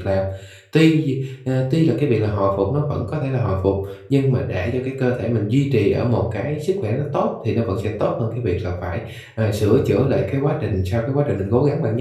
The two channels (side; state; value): both; identical; correlation 1.00